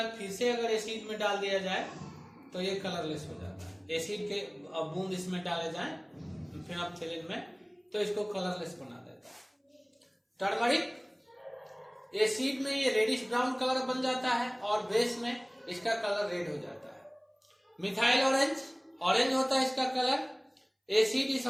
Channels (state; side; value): identical; both; correlation 1.00